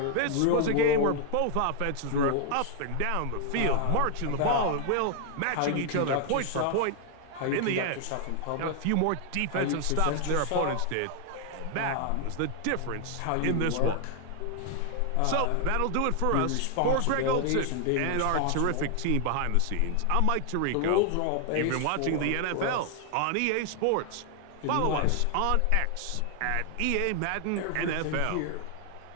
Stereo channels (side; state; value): both; different; correlation 0.00